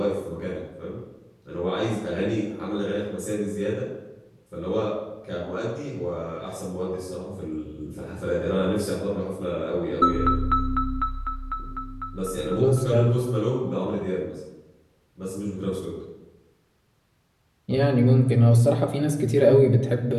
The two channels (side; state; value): both; identical; correlation 1.00